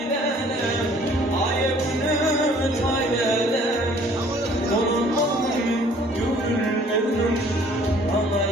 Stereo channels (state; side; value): normal; both; correlation 0.56